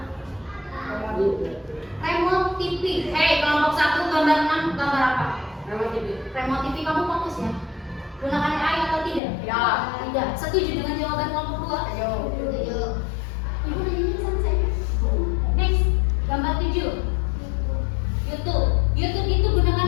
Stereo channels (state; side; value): drops out; right; at 9.2 s